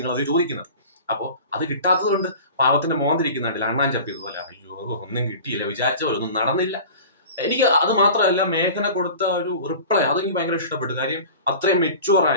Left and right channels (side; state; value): both; inverted; correlation -0.39